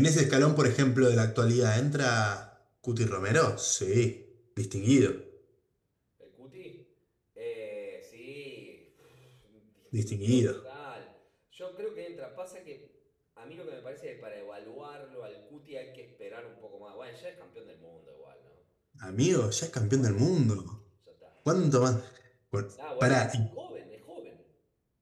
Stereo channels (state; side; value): identical; both; correlation 1.00